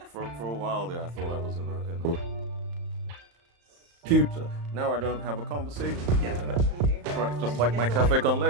For a while there, I thought I was in a computer. Now I don't have a conversation. Yeah. Meeting her. Right, just And like she my gets to, cafe con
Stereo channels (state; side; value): late; left; 35 ms